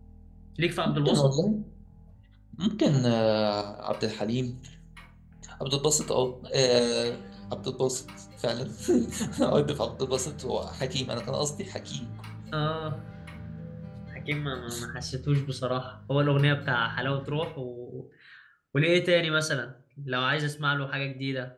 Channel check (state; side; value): identical; both; correlation 1.00